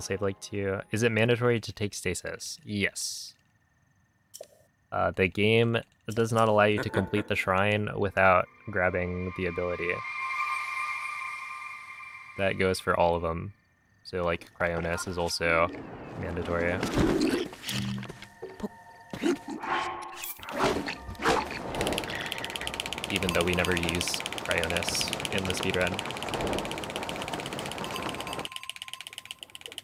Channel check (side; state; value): both; identical; correlation 1.00